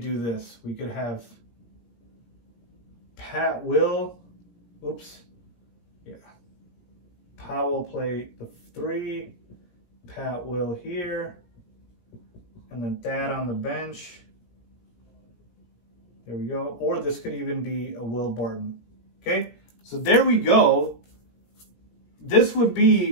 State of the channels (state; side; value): late; right; 17 ms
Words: this. We could have Powell play the 3, Pat Will here, and then Thad on the bench. There we go. Or this could even be a Will Barton. Okay, so there we go. This would